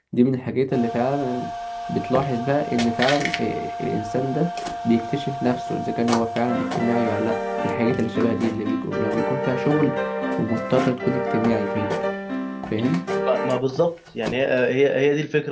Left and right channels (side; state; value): both; identical; correlation 1.00